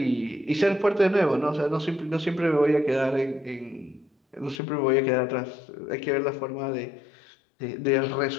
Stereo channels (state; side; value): drops out; right; at 4.6 s